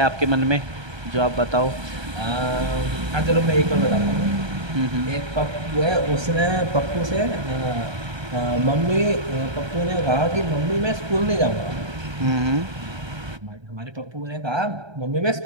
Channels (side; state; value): left; late; 1.3 ms